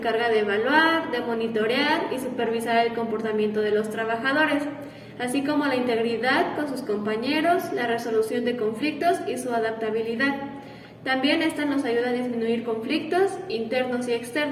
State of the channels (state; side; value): identical; both; correlation 1.00